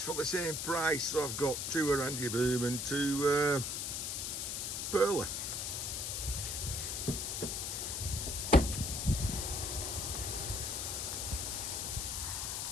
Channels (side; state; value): left; noise; hiss, 2 dB below the sound